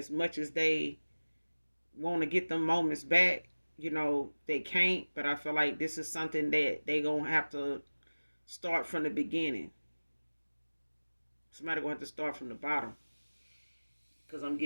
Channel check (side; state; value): both; inverted; correlation -1.00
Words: much as they want to get them moments back, they can't. But I feel like this is something that they gonna have to start from the beginning. Somebody gonna have to start from the bottom. Cause I'm